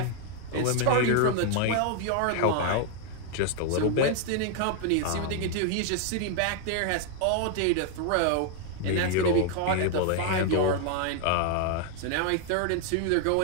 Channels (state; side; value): different; both; correlation 0.00